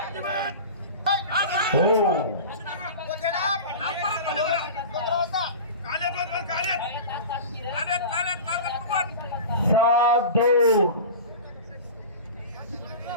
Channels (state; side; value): inverted; both; correlation -0.33